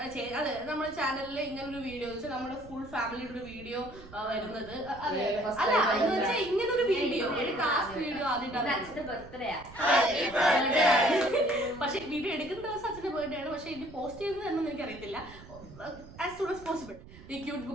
ചാനലിൽ ഇങ്ങനെ ഒരു വീഡിയോ നമ്മുടെ ഫുൾ ഫാമിലിയുടെ ഒരു വീഡിയോ വരുന്നത്. അല്ല എന്ന് വെച്ചാൽ ഇങ്ങനെ ഒരു വീഡിയോ കാസ്റ്റ് വീഡിയോ ആദ്യമായിട്ടാണ്. അച്ഛന്റെ ബർത്ത്ഡേ പക്ഷെ വീഡിയോ എടുക്കുന്ന ദിവസം അച്ഛന്റെ ബർത്ത്ഡേ ആണ്. പക്ഷെ ഇത് പോസ്റ്റ് ചെയ്യുന്നത് എന്നൊന്നും എനിക്കറിയത്തില്ല. As soon as possible. ഈ ക്യൂട്ട്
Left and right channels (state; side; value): noise; right; rumble, 18 dB below the sound